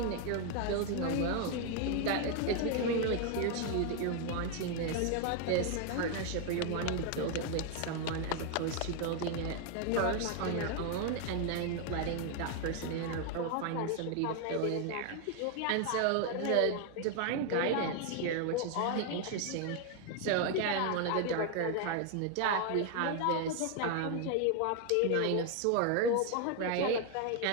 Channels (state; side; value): different; both; correlation 0.01